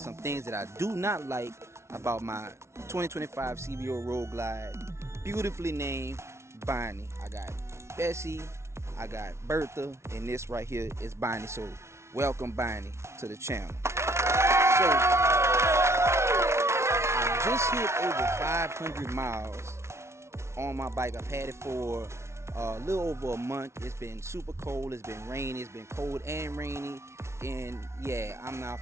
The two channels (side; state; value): left; late; 0.13 ms